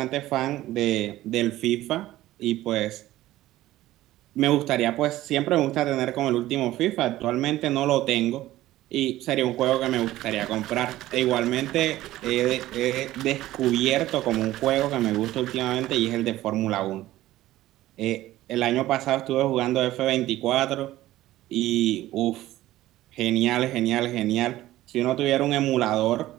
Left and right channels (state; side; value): quieter; left; 15.5 dB